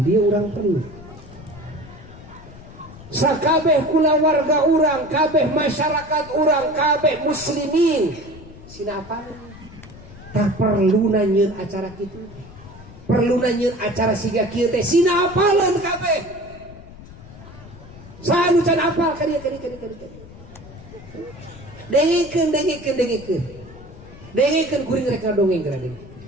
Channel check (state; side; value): noise; left; rumble, 18 dB below the sound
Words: orang perlu. Sakabeh kula warga orang, kabeh masyarakat orang, kabeh muslimin. Sina apa? Tak perlu nanyeun acara kitu. Perlu nanyeun acara siga kieu teh sina apaleun kabeh. Saha can apal kadia. Dengikeun. Dengikeun kuring rek dongeng gradeng.